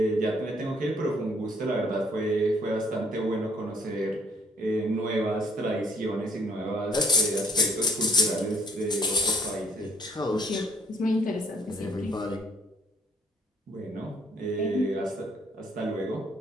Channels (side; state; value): both; normal; correlation 0.62